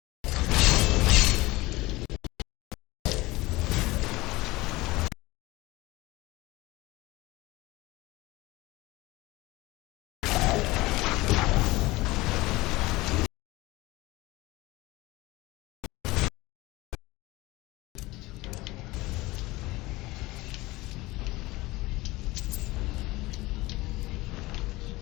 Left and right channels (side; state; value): right; quieter; 20.2 dB